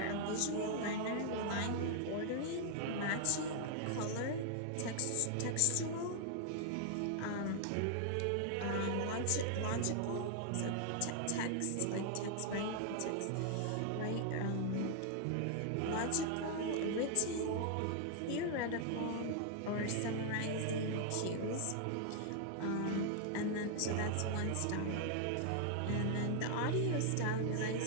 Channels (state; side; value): different; both; correlation 0.00